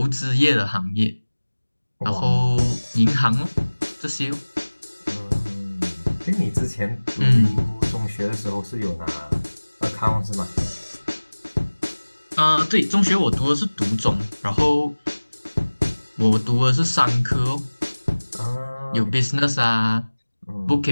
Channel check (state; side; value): inverted; both; correlation -1.00